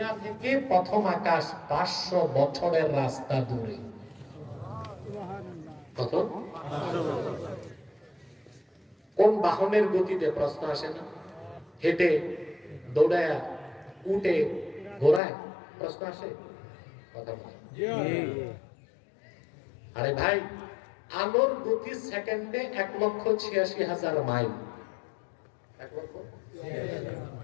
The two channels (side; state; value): right; drops out; at 15.2 s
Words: থেকে প্রথম আকাশ 500 বছরের রাস্তা দূরে। কত? কোন বাহনের গতিতে? প্রশ্ন আসে না? হেঁটে, দৌড়ায়, উঠে, ঘোড়ায়? প্রশ্ন আসে? কথা বলে। আরে ভাই, আলোর গতি সেকেন্ডে 1,86,000 মাইল। 1 লক্ষ?